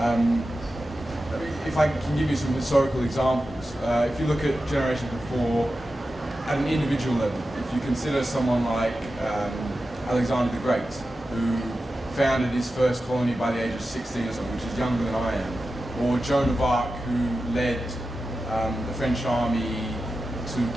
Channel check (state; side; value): normal; both; correlation 0.92